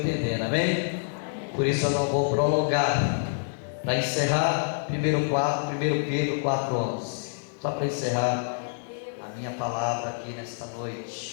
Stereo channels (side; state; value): right; silent; 58 dB below the other